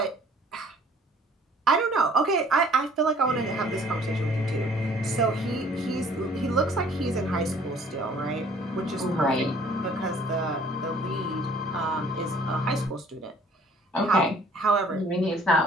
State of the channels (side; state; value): both; normal; correlation 0.56